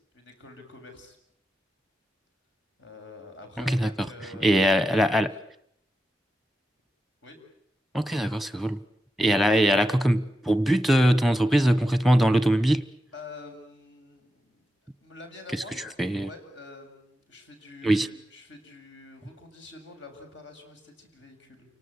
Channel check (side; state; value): both; normal; correlation 0.89